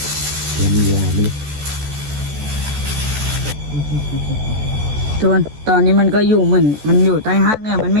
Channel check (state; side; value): late; left; 14 ms